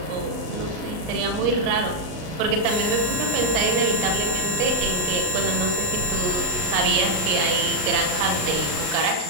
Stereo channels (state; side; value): late; left; 38 ms